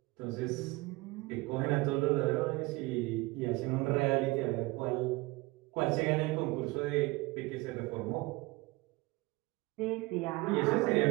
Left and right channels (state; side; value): quieter; left; 22.4 dB